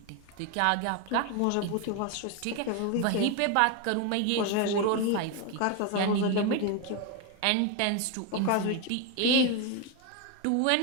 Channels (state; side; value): different; both; correlation 0.02